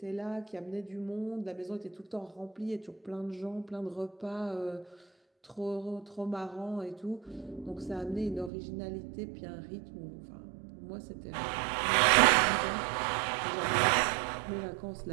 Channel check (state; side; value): drops out; left; at 8.5 s